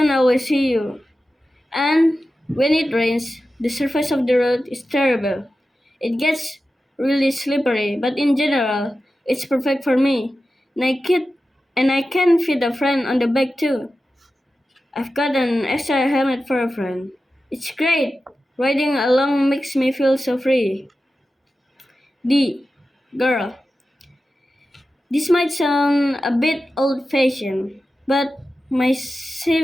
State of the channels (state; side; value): normal; both; correlation 0.93